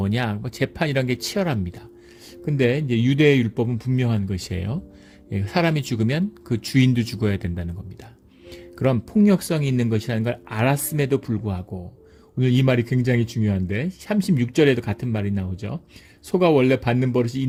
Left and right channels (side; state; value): both; identical; correlation 1.00